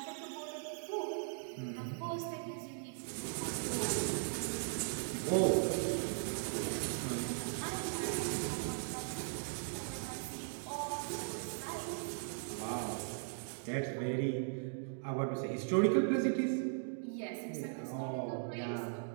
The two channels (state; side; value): silent; left; digital silence